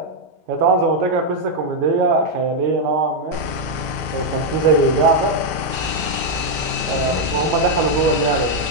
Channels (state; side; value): normal; both; correlation 0.00